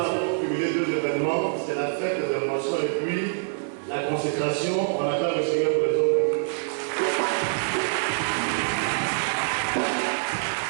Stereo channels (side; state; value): left; silent; 60 dB below the other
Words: pour cumuler deux événements. C'est la fête des émotions et puis la consécration. On acclame le Seigneur pour les autres.